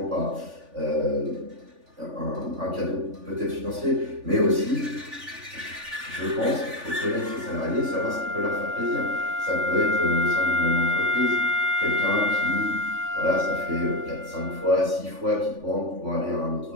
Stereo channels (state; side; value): late; left; 3.4 ms